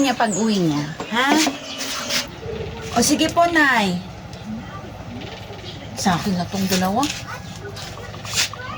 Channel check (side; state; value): both; identical; correlation 1.00